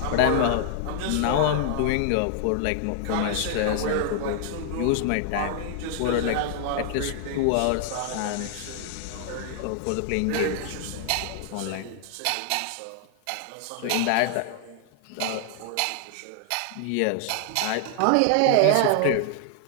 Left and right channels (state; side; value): different; both; correlation 0.00